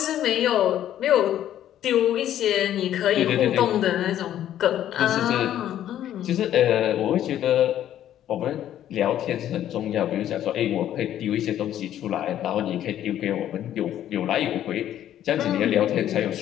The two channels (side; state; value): right; quieter; 11.5 dB